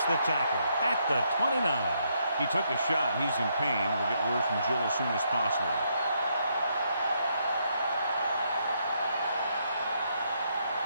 the tackle at the 29. He took a shot. He's in pain. We'll get word from Jill as soon as possible.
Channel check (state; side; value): inverted; both; correlation -0.75